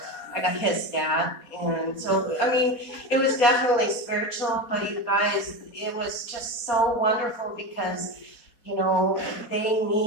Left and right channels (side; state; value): right; late; 4.2 ms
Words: got hissed at. And so, I mean, it was definitely spiritual, but you guys, it was just so wonderful because, you know, they